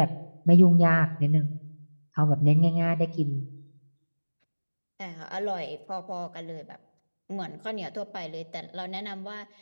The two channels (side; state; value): both; inverted; correlation -1.00